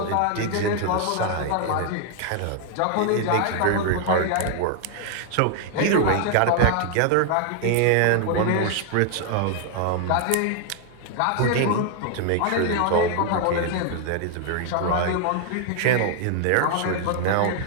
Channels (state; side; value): different; both; correlation 0.00